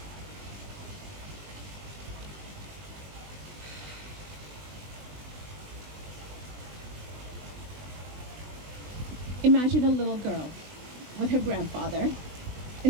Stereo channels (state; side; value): late; left; 20 ms